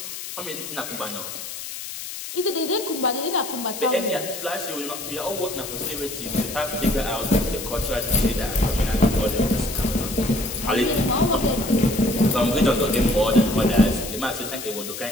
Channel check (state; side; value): noise; left; hiss, 9 dB below the sound